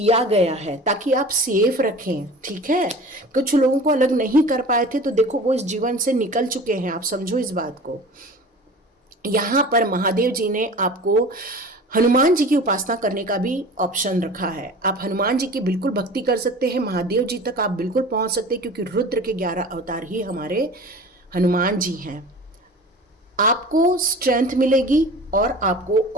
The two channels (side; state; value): both; normal; correlation 0.39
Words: गया है ताकि आप सेफ रखें। ठीक है, कुछ लोगों को अलग नहीं कर पाए थे, तो देखो वो इस जीवन से निकल चुके हैं, आप समझो इस बात को। यहाँ पर महादेव जी ने आपको हनुमान जी की उपासना करने का भी ऑप्शन रखा है। आप हनुमान जी की बिल्कुल भक्ति कर सकते हैं, महादेव जी तक आप बिल्कुल पहुंच सकते हैं, क्योंकि रुद्र के 11 अवतार ही हमारे हनुमान जी हैं। आपको स्ट्रेंथ मिलेगी और आपको